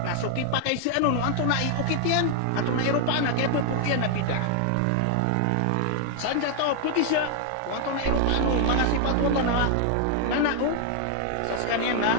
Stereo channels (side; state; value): both; different; correlation 0.00